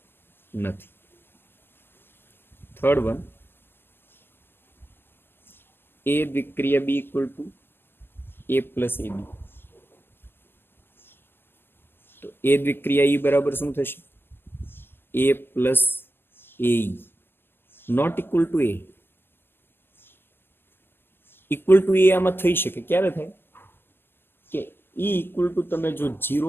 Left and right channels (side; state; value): right; late; 0.10 ms